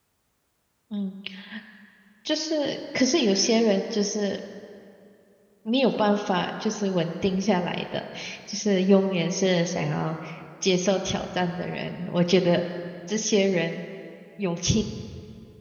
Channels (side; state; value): both; identical; correlation 1.00